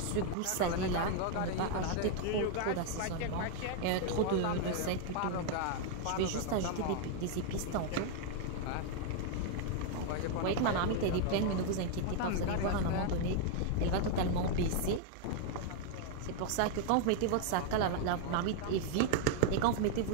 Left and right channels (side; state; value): both; different; correlation 0.00